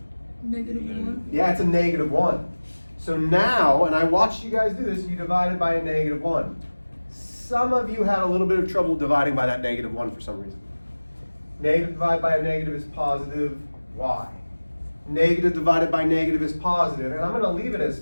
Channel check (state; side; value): inverted; both; correlation -1.00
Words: -1. Yeah, it's a -1. So now, and I watched you guys do this, you divided by a -1. Some of you had a little bit of trouble dividing by that -1 for some reason. Negative divided by a negative is positive y. Negative divided by negative is positive, and I'm going to leave it as